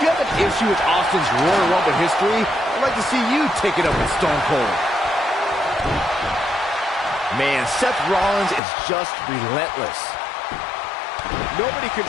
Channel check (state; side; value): drops out; right; at 8.6 s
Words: you have an issue with Austin's Royal Rumble history, I'd like to see you take it up with Stone Cold. Man, Seth Rollins is just relentless. Nobody